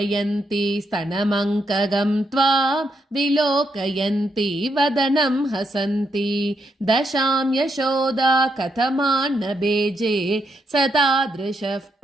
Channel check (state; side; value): normal; both; correlation 0.79